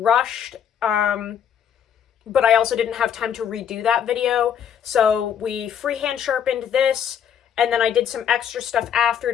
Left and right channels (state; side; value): quieter; right; 8.6 dB